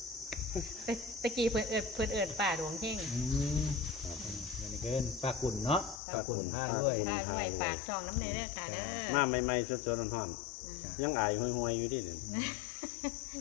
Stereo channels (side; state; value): right; drops out; at 6.0 s